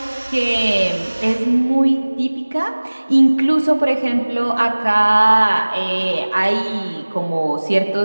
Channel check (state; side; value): inverted; both; correlation -1.00